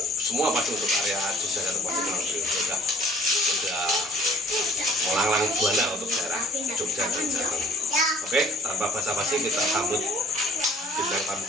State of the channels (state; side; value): normal; both; correlation 0.55